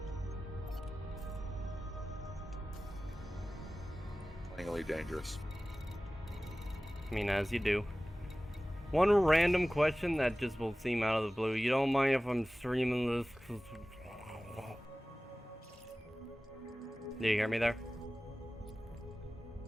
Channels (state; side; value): normal; both; correlation 0.97